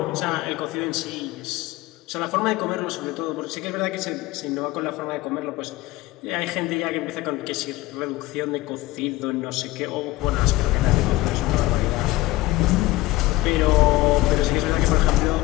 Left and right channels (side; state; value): right; quieter; 18.1 dB